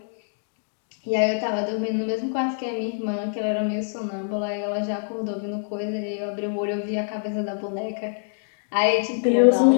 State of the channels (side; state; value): right; silent; digital silence